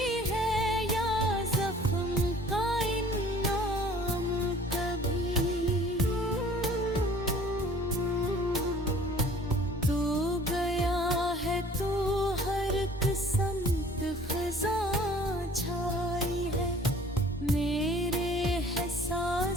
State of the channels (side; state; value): both; normal; correlation 0.51